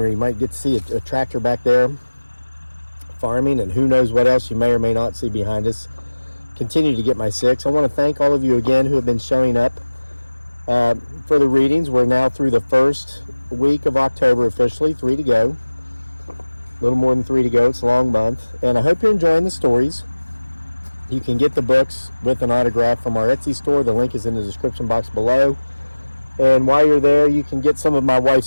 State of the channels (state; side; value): inverted; both; correlation -1.00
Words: You might get to see a tractor back there farming, and who knows what else you may or may not see behind us. Continue to get my 6. I want to thank all of you again who have been showing up for the readings. We're now through the first week of October officially, 3 to go. A little more than 3 to go. It's a long month. And I hope you're enjoying the stories. You can get the books with an autograph from our Etsy store. The link is in the description box below. And while you're there, you can get some of my